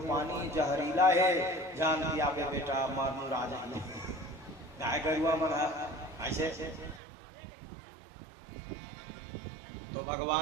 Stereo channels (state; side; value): drops out; left; at 7.0 s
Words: पानी जहरीला है, जान दिया बे बेटा मारू राजा गाय गरुआ मन ऐसे। तो